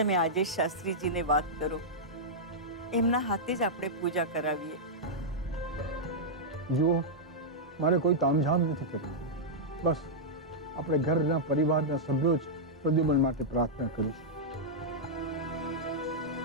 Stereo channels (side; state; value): both; normal; correlation -0.08